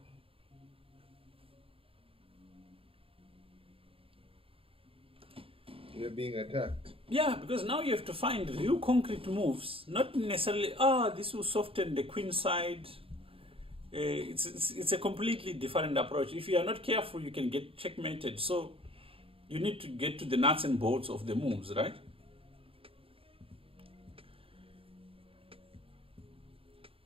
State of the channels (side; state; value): left; late; 0.27 ms